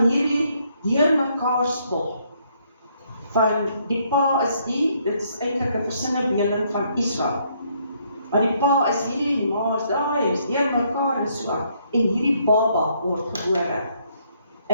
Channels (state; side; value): inverted; both; correlation -0.70